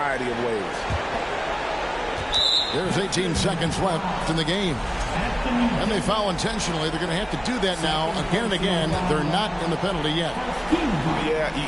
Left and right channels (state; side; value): identical; both; correlation 1.00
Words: of ways. There's 18 seconds left in the game. And they foul intentionally. They're going to have to do that now again and again. They're not in the penalty yet. Yeah,